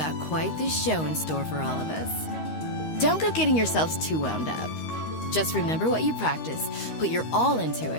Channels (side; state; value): right; late; 13 ms